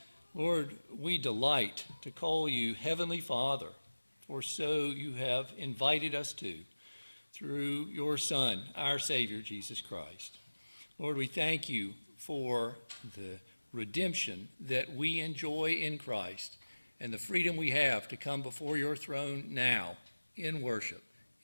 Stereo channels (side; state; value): both; inverted; correlation -1.00